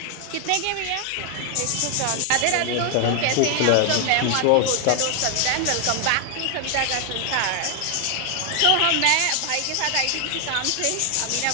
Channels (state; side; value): different; both; correlation 0.00